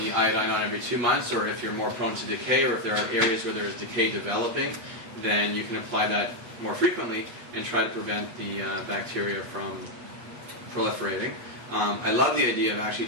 iodine on every 2 months, or if you're more prone to decay, or if there are areas where there is decay developing, then you can apply that more frequently and try to prevent the bacteria from proliferating. I love the idea of actually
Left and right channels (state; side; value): late; left; 8.3 ms